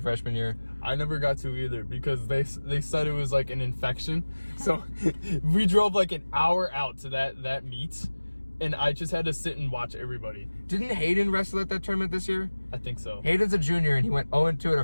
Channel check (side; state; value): both; inverted; correlation -1.00